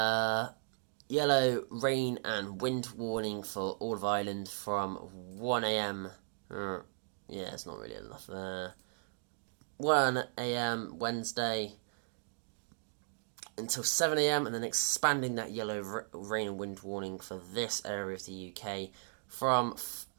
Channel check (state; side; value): silent; left; digital silence